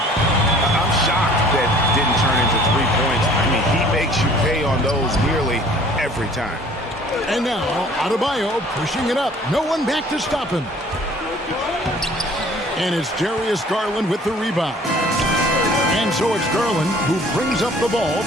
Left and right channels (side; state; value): both; normal; correlation 0.52